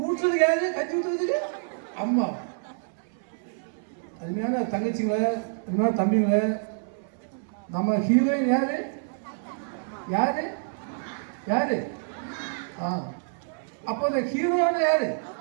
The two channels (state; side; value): silent; left; 60 dB below the other